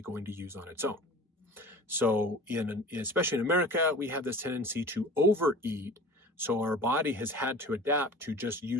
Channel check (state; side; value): normal; both; correlation 0.39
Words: going to use on its own. So especially in America, we have this tendency to overeat. So our body has had to adapt to just